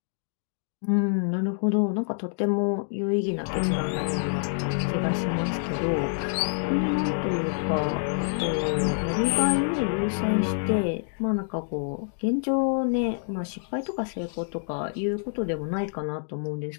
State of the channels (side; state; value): right; silent; digital silence